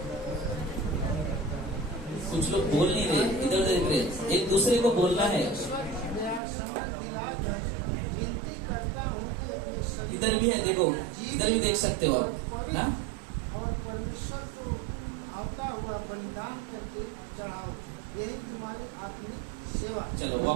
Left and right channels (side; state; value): left; drops out; at 6.4 s